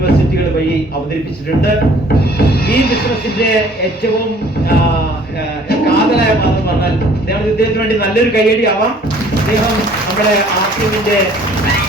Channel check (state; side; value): normal; both; correlation 0.55